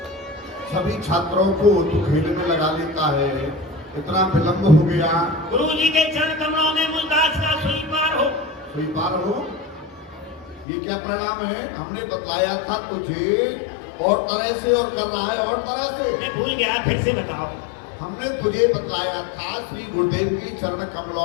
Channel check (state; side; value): drops out; right; at 10.7 s